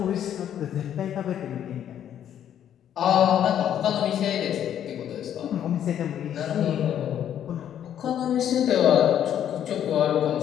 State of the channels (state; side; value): quieter; right; 10.1 dB